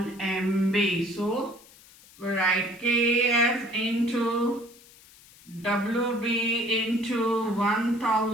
MB. So we write Kf into WB into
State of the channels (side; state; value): left; noise; hiss, 24 dB below the sound